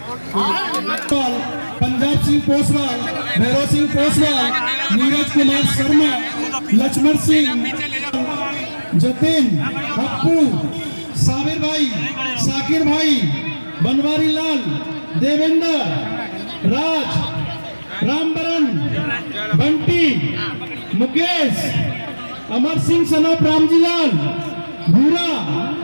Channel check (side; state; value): both; inverted; correlation -1.00